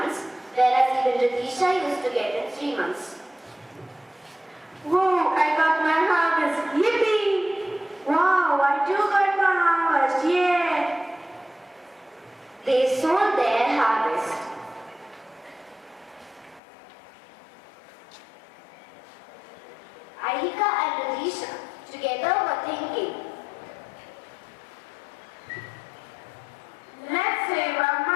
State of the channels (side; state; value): right; drops out; at 16.6 s